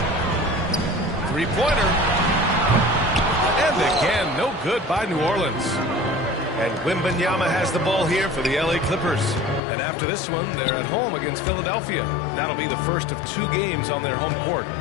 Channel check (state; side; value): drops out; right; at 9.6 s